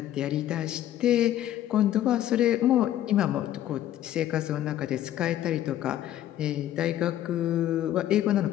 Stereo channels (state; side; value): quieter; right; 12.4 dB